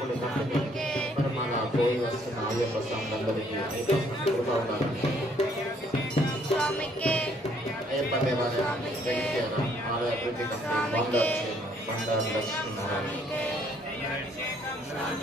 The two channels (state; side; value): normal; both; correlation 0.65